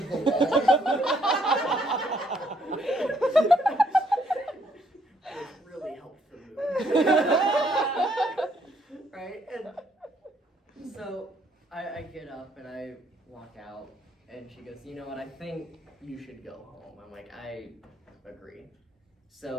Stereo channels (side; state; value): both; normal; correlation 0.69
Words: the wall. It really helped the mood. Right? And so I get up and I walk out, and she goes, you know what, I think you should go home. I'm like, I agree.